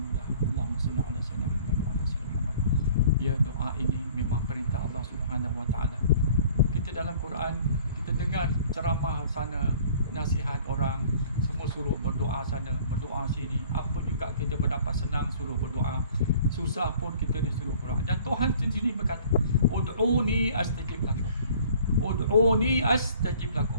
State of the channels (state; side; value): inverted; both; correlation -0.52